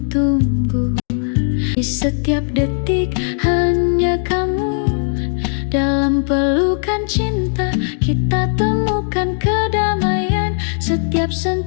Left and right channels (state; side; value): silent; right; 68 dB below the other